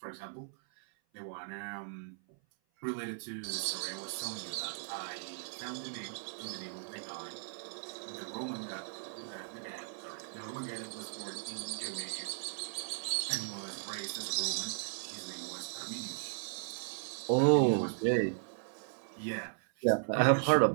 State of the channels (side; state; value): left; silent; 53 dB below the other